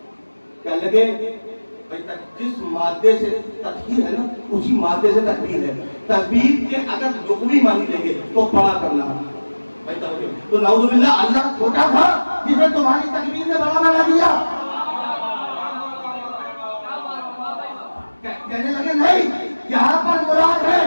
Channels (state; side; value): inverted; both; correlation -1.00